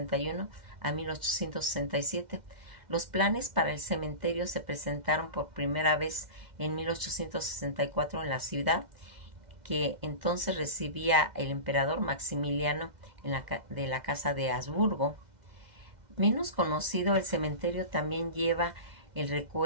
a 1867. Los planes para el cementerio se presentaron por primera vez en 1864 en la ciudad, que entonces recibía el emperador Maximiliano de la Casa de Habsburgo. Menos conocido, el cementerio también lleva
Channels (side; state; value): left; late; 2.1 ms